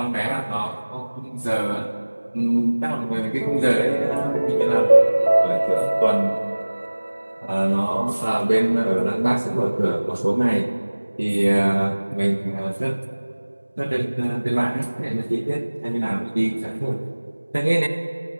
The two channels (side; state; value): both; inverted; correlation -1.00